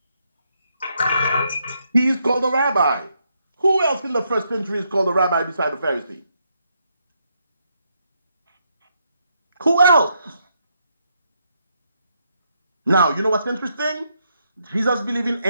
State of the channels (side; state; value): both; inverted; correlation -0.77